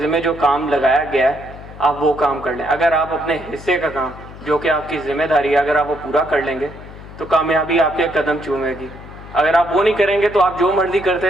جو کام لگایا گیا ہے آپ وہ کام کر لیں. اگر آپ اپنے حصے کا کام جو کہ آپ کی ذمہ داری ہے اگر آپ وہ پورا کر لیں گے تو کامیابی آپ کے قدم چومے گی. اگر آپ وہ نہیں کریں گے تو آپ جو مرضی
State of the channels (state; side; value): noise; left; hum, 16 dB below the sound